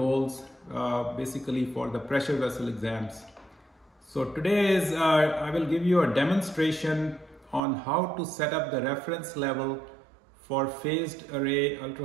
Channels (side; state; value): left; drops out; at 7.6 s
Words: basically for the pressure vessel exams. So today I will give you a demonstration on how to set up the reference level for phased array